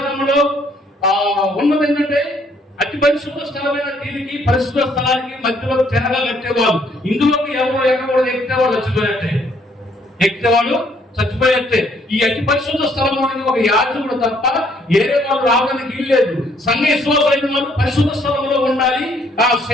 ఉన్నది ఏంటంటే, అతి పరిశుద్ధ స్థలమైన దీనికి పరిశుద్ధ స్థలానికి మధ్యలో తెరగా కట్టేవాళ్ళు. ఇందులోకి ఎవరు ఎక్కకూడదు. ఎక్కేవాడు చచ్చిపోయేట్టే. ఈ అతి పరిశుద్ధ స్థలంలోనికి ఒక యాజకుడు తప్ప ఏరే వాళ్ళు రావడానికి వీల్లేదు. సంఘ విశ్వాసమైన వాళ్ళు పరిశుద్ధ స్థలంలో ఉండాలి. ఆ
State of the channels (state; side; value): normal; both; correlation 0.66